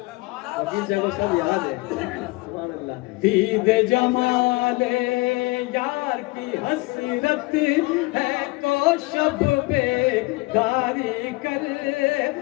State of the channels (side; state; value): right; quieter; 23.7 dB